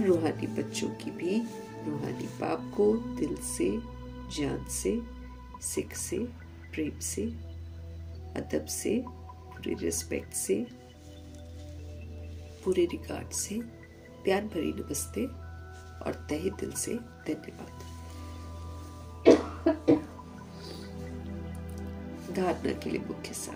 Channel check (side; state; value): both; identical; correlation 1.00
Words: रूहानी बच्चों की भी रूहानी बाप को दिल से, जान से, सिख से, प्रेम से, अदब से, पूरे रिस्पेक्ट से, पूरे रिगार्ड से प्यार भरी नमस्ते और तहे दिल से धन्यवाद। धारणा के लिए मुख्य